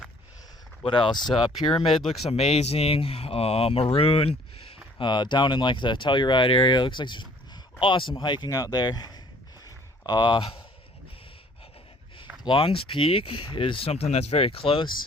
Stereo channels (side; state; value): both; normal; correlation 0.57